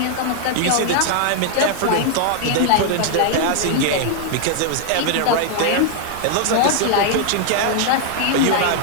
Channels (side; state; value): both; different; correlation 0.00